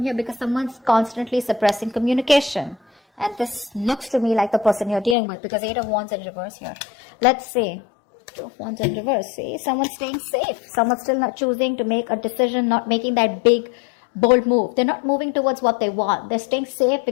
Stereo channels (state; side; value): drops out; right; at 5.2 s